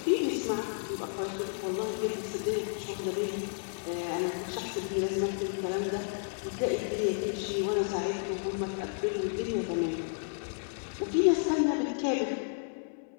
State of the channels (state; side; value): silent; right; 56 dB below the other